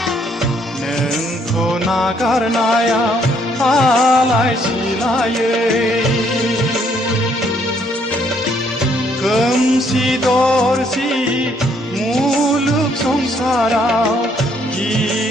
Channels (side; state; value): both; normal; correlation 0.68